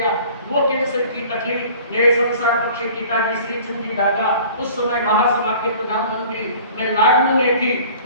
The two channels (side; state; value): both; inverted; correlation -0.47